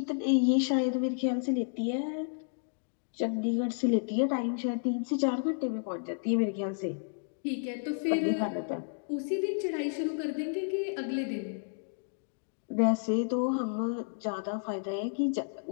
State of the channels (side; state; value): right; silent; digital silence